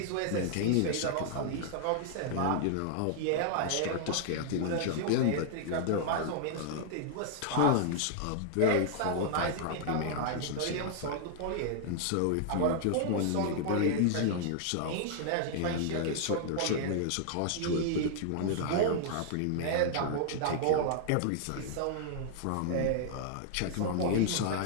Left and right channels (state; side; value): different; both; correlation 0.00